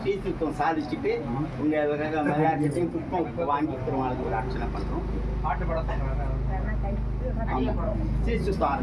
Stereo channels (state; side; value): identical; both; correlation 1.00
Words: ஸ்ரீ சுத்தம் சாதிச்சுட்டு உங்கள் விளையாட்டுத்தையும் புஷ்பம் வாங்கி பெருமாளுக்கு ஒரு அர்ச்சனை பண்ணுறோம். பாட்டு பாட ஆமாம், ஸ்ரீ சுத்தம்